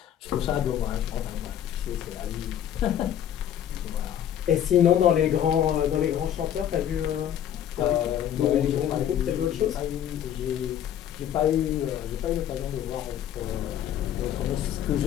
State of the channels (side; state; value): right; quieter; 10.2 dB